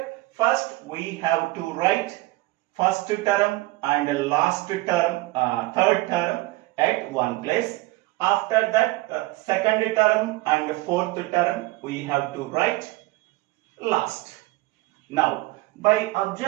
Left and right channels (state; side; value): quieter; left; 20.0 dB